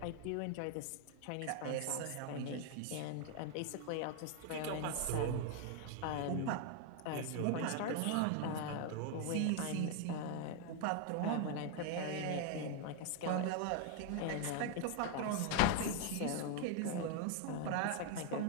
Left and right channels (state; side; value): different; both; correlation 0.00